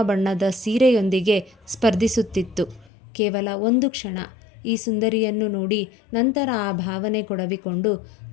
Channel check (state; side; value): drops out; right; at 2.9 s